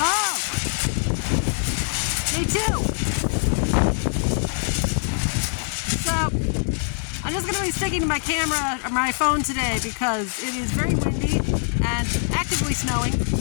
Me too! So, I'm just going to be sticking to my camera or my phone today because it is very windy and actively snowing,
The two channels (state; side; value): silent; right; 63 dB below the other